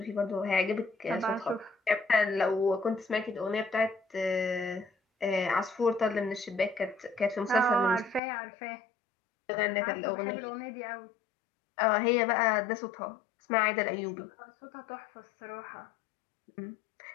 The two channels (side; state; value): right; drops out; at 8.2 s